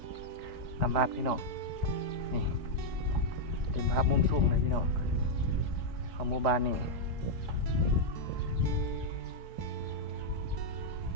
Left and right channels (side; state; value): left; late; 4.2 ms